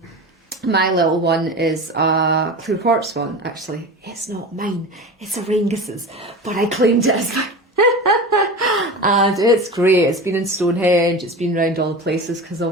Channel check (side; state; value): both; normal; correlation 0.30